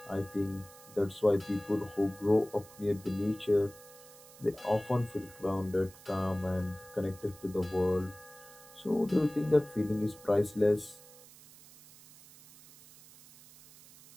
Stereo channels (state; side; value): noise; right; hiss, 21 dB below the sound